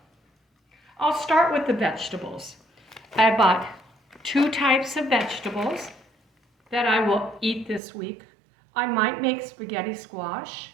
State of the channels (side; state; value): left; drops out; at 7.8 s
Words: I'll start with the vegetables. I bought 2 types of vegetables that I will eat this week. I might make spaghetti squash